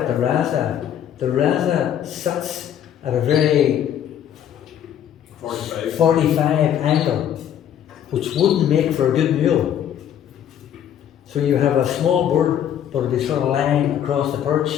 the rasa sits at a very 45 angle, which wouldn't make for a good mule. So you have a small bird, but it'd be sort of lying across the perch,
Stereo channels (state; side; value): quieter; right; 9.8 dB